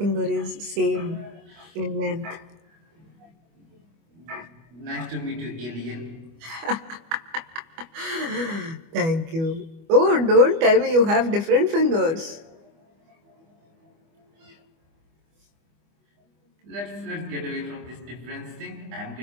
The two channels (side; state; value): left; late; 25 ms